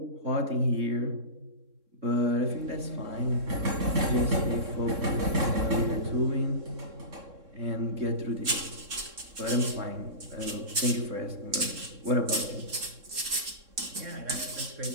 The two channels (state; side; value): late; left; 3.6 ms